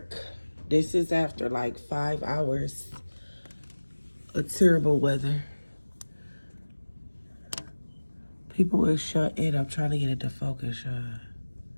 This is after like 5 hours of terrible weather. People is shut in. I'm trying to get it to focus.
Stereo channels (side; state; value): both; inverted; correlation -1.00